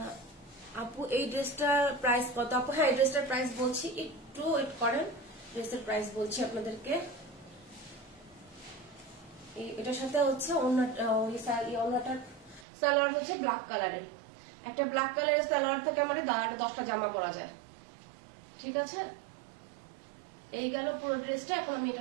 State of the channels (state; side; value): drops out; left; at 12.7 s